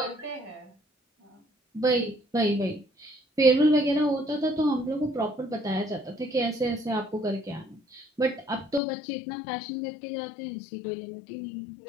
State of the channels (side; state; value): right; drops out; at 8.8 s